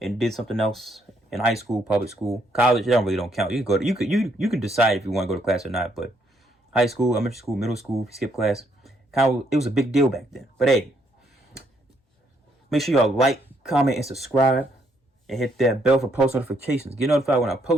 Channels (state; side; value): normal; both; correlation 0.72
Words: and did something else in high school, public school, college. It don't count. You can go. You can decide if you want to go to class or not. But high school, elementary school, middle school, if you skip class, it was a big deal back then. But hey, make sure y'all like, comment, and subscribe. And hit that bell for post notifications. Get notified when I